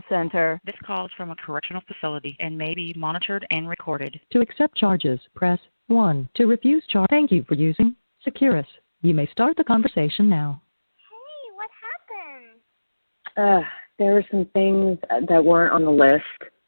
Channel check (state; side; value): inverted; both; correlation -1.00